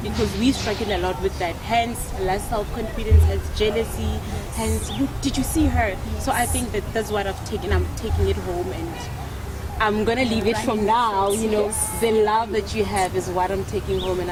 because we struggle a lot with that. Hence, less self-confidence, hence jealousy, hence, did you see her? So I think that that's what I've taken. I'm taking it home, and I'm going to leave it from now, you know. The love that you have is what I'm taking home, and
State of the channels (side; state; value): both; identical; correlation 1.00